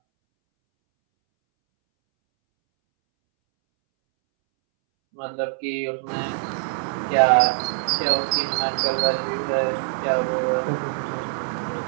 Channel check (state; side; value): silent; left; 63 dB below the other